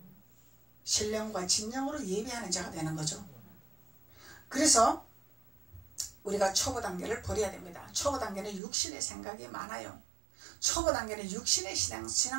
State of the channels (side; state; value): left; drops out; at 8.6 s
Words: 신령과 진정으로 예배하는 자가 되는 거죠. 그래서 우리가 초보 단계를 버려야 됩니다. 초보 단계는 육신의 생각이 많아요. 초보 단계는 육신의